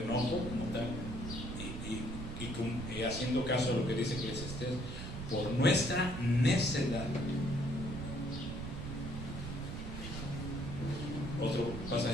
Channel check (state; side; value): noise; right; rumble, 6 dB below the sound